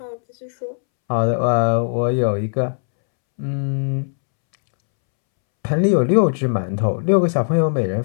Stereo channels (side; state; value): right; silent; 66 dB below the other